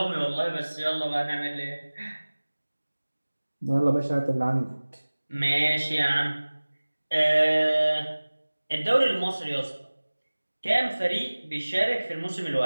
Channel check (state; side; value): inverted; both; correlation -1.00